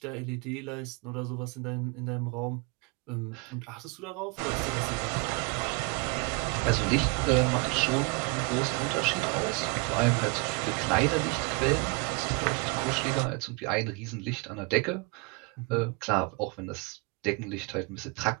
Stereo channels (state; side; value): quieter; left; 30.3 dB